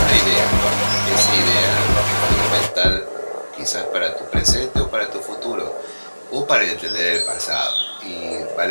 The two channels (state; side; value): inverted; both; correlation -1.00